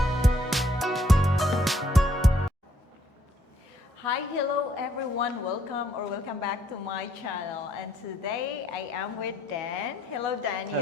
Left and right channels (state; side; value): normal; both; correlation 0.68